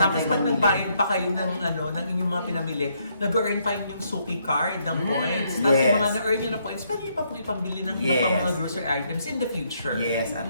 may pag mamili. nagbayad pa kayo ng inyong mga pinamili, nag-earn pa yung suki card ng points. Tapos Yes. yung mga na-earn nyo na points, pwede nyo pa po ipambili ng iba pang Yes. mga grocery items in the future. Yes, at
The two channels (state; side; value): inverted; both; correlation -0.73